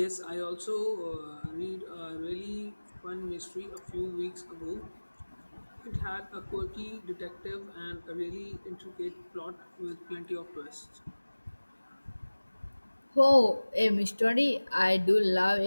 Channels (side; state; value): both; inverted; correlation -1.00